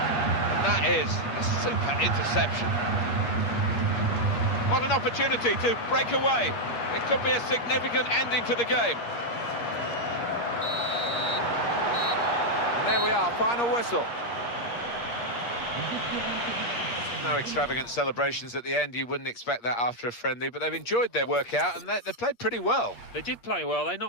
And that is a super interception. What an opportunity to break away. It could be a significant ending to the game. And there we are, final whistle. No extravagant celebrations at the end. You wouldn't expect that after a friendly, but they've enjoyed their workout and they played pretty well. They did play well. They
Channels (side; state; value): right; late; 8.5 ms